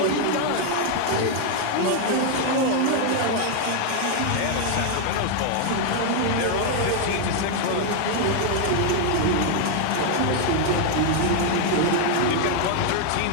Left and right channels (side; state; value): both; different; correlation 0.00